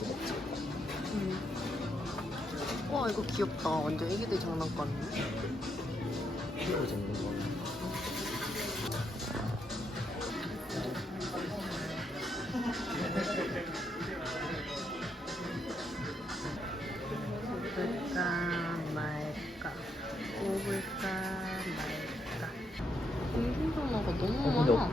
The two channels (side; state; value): both; normal; correlation 0.78